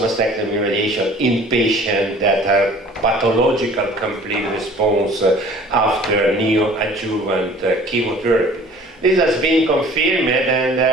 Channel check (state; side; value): normal; both; correlation 0.49